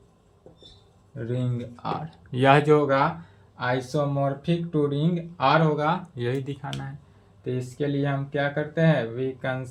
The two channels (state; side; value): identical; both; correlation 1.00